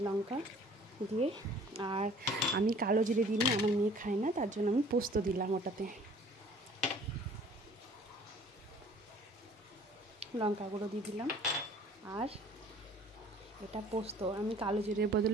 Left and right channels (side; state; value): both; normal; correlation 0.52